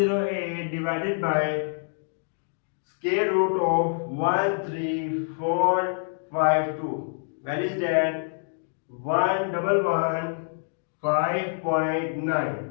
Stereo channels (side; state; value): right; silent; digital silence